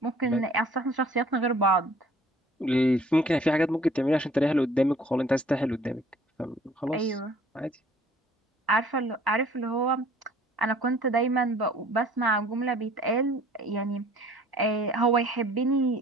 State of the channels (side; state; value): both; normal; correlation 0.54